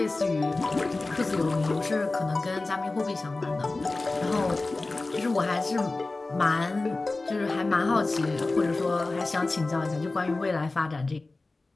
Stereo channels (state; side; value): quieter; right; 3.3 dB